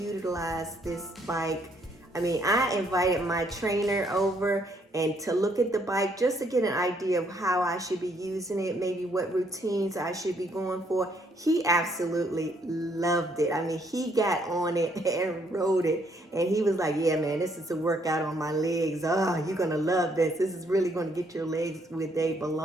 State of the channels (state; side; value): normal; both; correlation 0.69